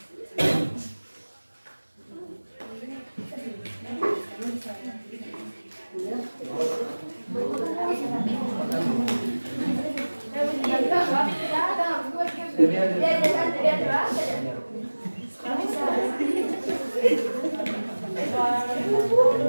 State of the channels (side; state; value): both; inverted; correlation -1.00